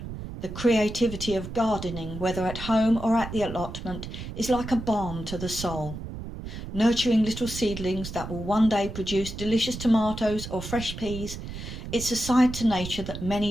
The creativity of gardening, whether at home or at the allotment, is like a balm to the soul. Nurturing little seedlings that will one day produce delicious tomatoes or fresh peas, it's a side to nature that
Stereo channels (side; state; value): right; noise; rumble, 9 dB below the sound